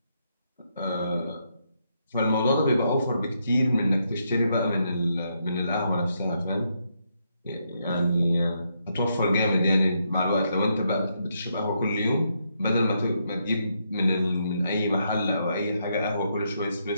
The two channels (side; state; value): both; inverted; correlation -0.78